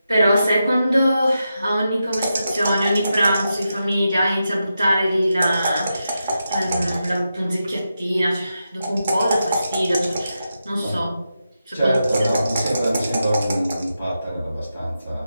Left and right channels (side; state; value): both; inverted; correlation -0.88